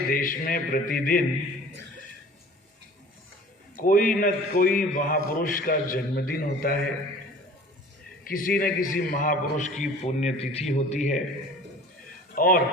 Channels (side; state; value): both; normal; correlation 0.45